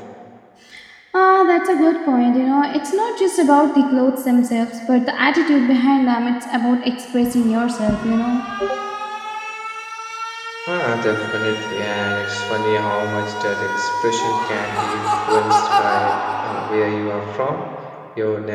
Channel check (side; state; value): both; identical; correlation 1.00